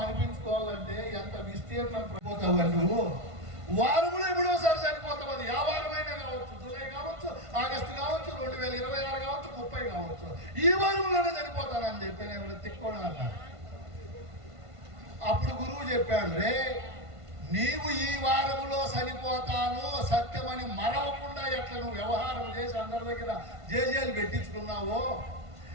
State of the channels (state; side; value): late; left; 1.5 ms